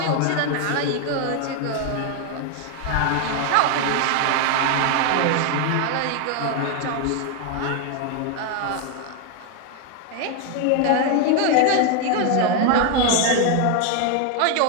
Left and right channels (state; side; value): different; both; correlation 0.01